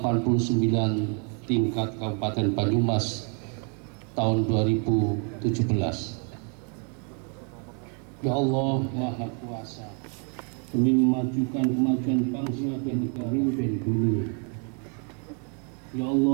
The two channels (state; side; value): quieter; left; 39.2 dB